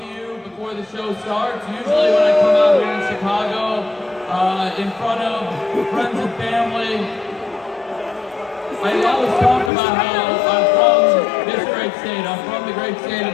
The show starts. Usually when I come out here in Chicago, in front of friends and family, I always talk about how I'm from this great state. I'm from the great state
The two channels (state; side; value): drops out; right; at 9.7 s